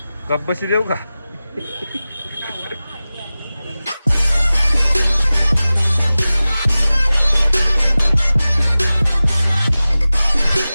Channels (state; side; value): inverted; both; correlation -0.96